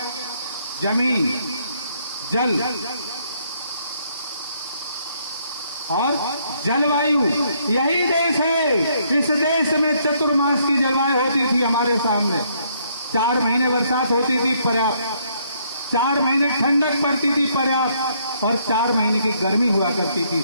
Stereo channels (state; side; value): inverted; both; correlation -0.69